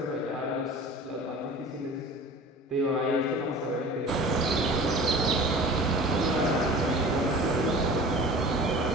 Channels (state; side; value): normal; both; correlation 0.41